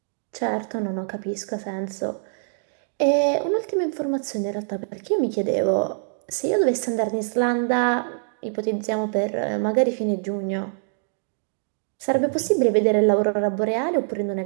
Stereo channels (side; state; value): left; silent; digital silence